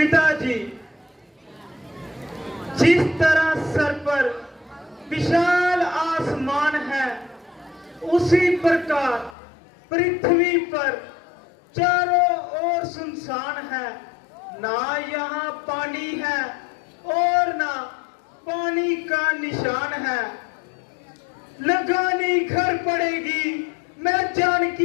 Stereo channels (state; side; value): drops out; right; at 9.3 s